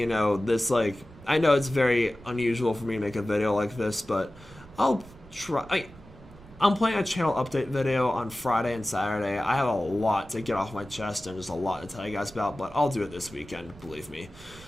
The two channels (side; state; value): right; noise; rumble, 21 dB below the sound